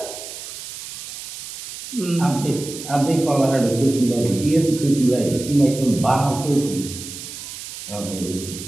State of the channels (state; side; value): noise; right; hiss, 10 dB below the sound